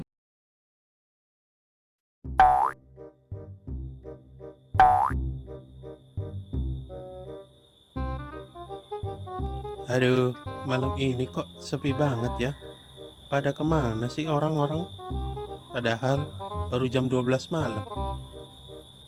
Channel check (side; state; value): both; identical; correlation 1.00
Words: Aduh, malam ini kok sepi banget ya? Pada kemana sih orang-orang? Padahal baru jam 12 malam.